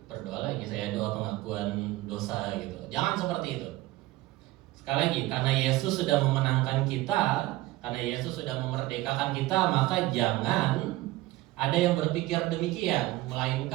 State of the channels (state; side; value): quieter; left; 18.1 dB